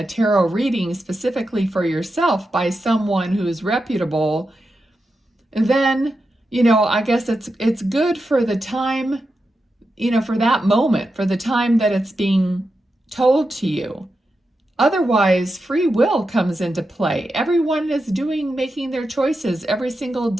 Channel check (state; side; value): normal; both; correlation 0.89